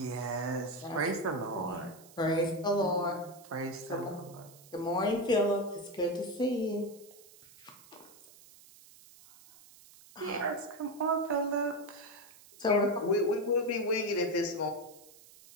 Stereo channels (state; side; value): noise; right; hiss, 22 dB below the sound